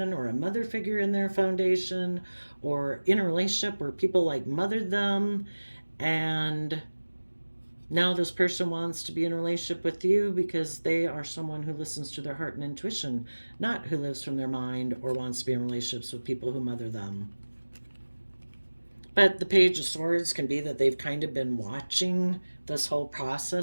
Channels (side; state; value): both; inverted; correlation -1.00